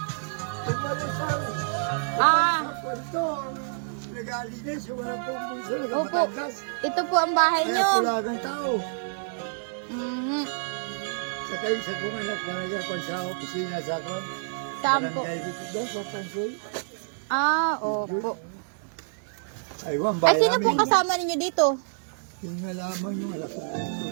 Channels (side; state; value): left; silent; digital silence